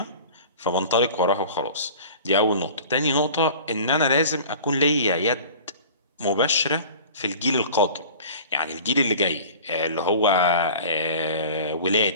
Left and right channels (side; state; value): both; inverted; correlation -0.41